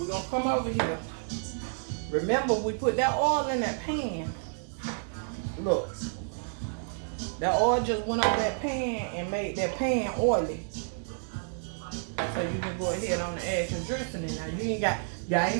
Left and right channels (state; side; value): silent; left; digital silence